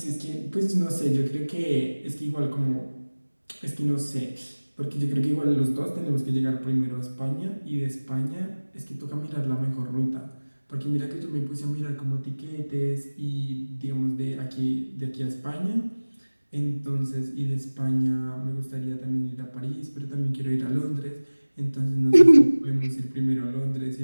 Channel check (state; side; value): inverted; both; correlation -1.00